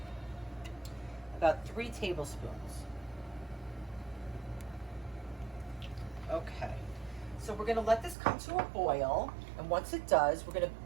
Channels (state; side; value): drops out; left; at 8.2 s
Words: About 3 tablespoons. Okay. So we're going to let this come to a boil, and once it does, we're going to